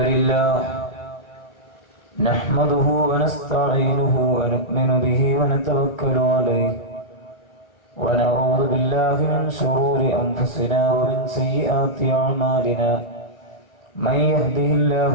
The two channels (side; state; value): right; late; 1.2 ms